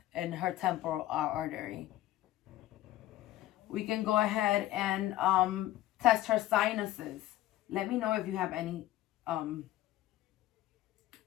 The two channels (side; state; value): right; quieter; 14.6 dB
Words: in her temporal artery. We can go ahead and test her sinuses. Let me know if you have any